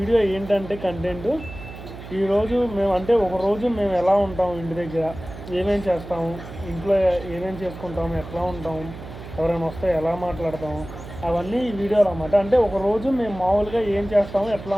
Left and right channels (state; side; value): noise; right; hum, 13 dB below the sound